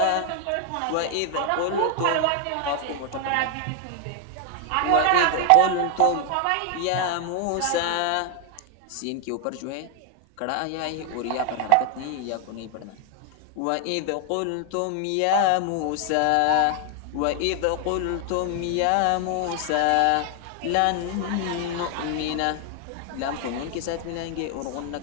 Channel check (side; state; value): both; different; correlation 0.00